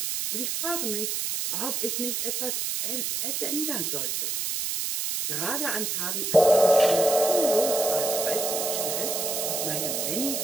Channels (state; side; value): noise; right; hiss, 1 dB below the sound